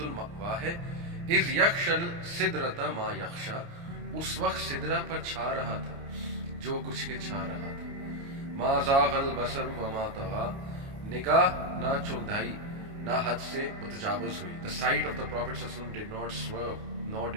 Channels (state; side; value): late; left; 29 ms